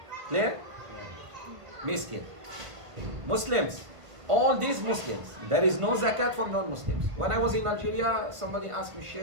Clear? Miskin. Muslims. All these Muslims. There is no zakat for non-Muslims. When I was in Algeria, somebody asked me,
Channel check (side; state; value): left; late; 1.5 ms